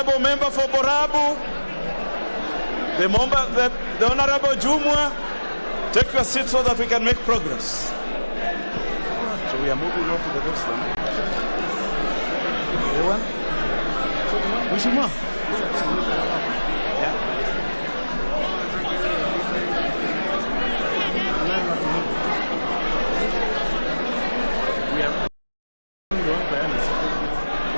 member for Borabu, the Honorable Jumwa, take your seat so that we can make progress. So we are moving on to the next one. The one?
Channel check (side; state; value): both; inverted; correlation -1.00